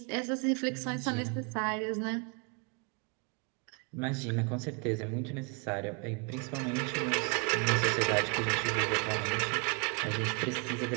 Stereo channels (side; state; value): left; quieter; 34.8 dB